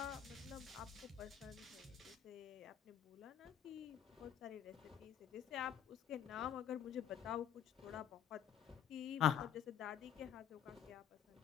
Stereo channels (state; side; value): quieter; right; 9.6 dB